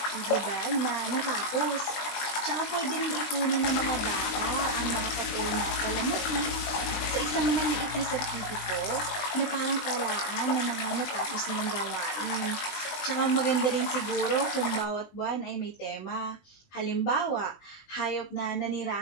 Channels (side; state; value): right; late; 20 ms